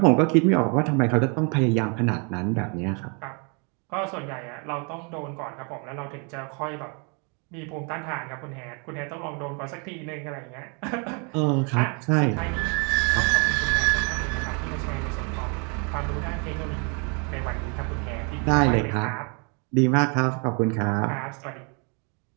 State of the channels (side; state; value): left; quieter; 35.1 dB